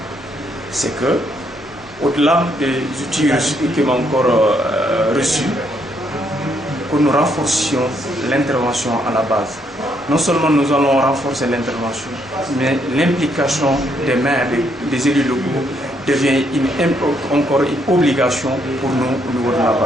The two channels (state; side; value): noise; left; hum, 27 dB below the sound